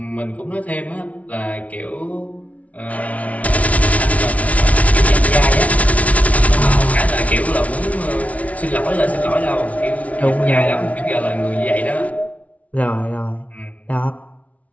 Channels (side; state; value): right; late; 0.067 ms